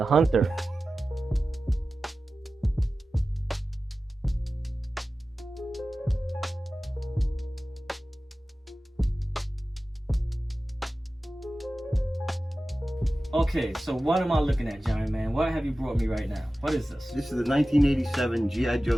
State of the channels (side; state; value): both; normal; correlation 0.95